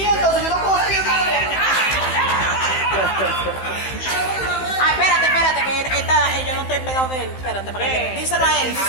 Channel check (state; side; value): late; right; 15 ms